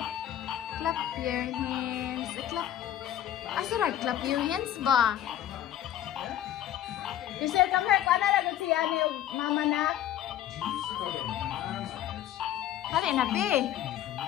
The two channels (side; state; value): right; quieter; 11.6 dB